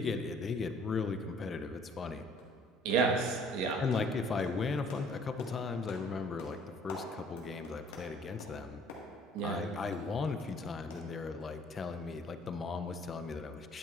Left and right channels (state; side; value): normal; both; correlation 0.56